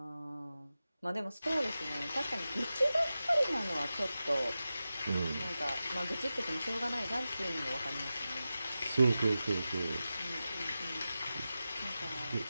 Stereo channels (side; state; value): both; inverted; correlation -0.93